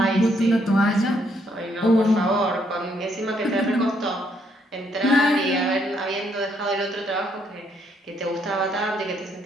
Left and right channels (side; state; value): both; normal; correlation 0.72